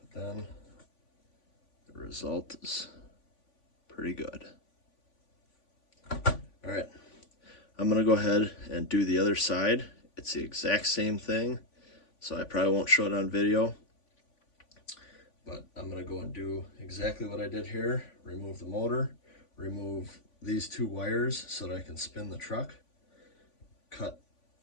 then the result is pretty good. All right, I'm gonna go ahead and do the other side. It's the exact same thing, so I probably won't show it on video, but I'm gonna go and do exactly what I did here. Remove the motor, remove these two wires so that I can spin the truck, cut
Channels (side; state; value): right; late; 3.5 ms